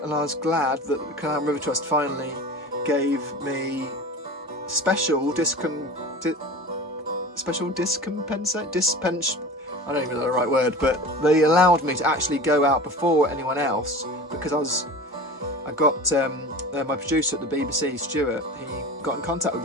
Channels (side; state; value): both; normal; correlation 0.35